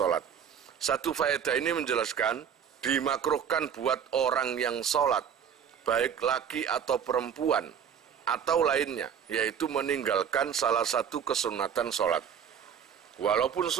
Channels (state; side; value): quieter; left; 7.9 dB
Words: Satu faedah ini menjelaskan dimakruhkan buat orang yang salat baik laki atau perempuan atau lainnya, yaitu meninggalkan salah satu kesunatan sholat. Walaupun